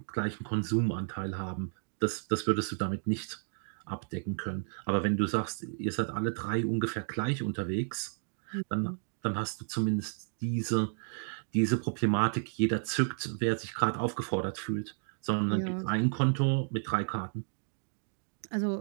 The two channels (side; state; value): left; silent; digital silence